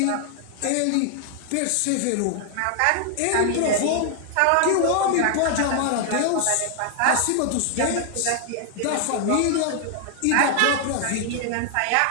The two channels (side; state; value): both; different; correlation 0.00